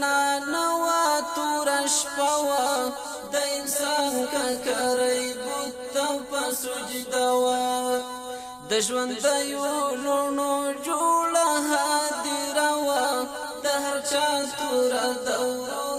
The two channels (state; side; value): identical; both; correlation 1.00